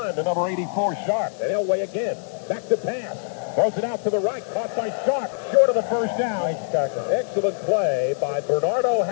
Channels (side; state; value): right; silent; digital silence